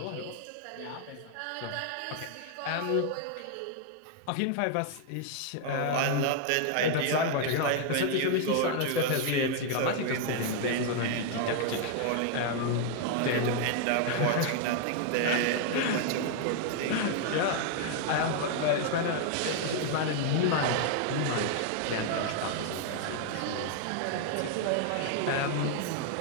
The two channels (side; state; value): both; different; correlation 0.00